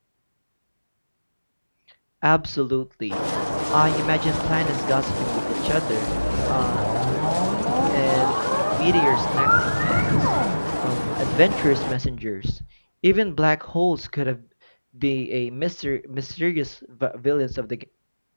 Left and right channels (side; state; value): both; inverted; correlation -1.00